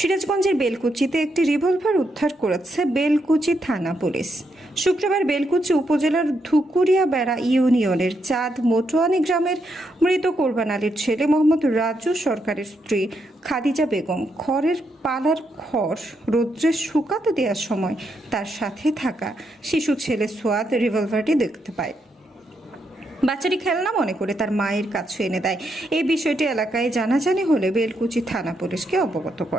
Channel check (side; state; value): both; normal; correlation 0.80